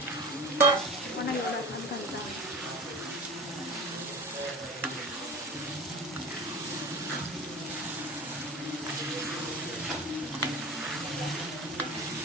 कोणा एवढा घालता.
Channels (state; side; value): normal; both; correlation 0.36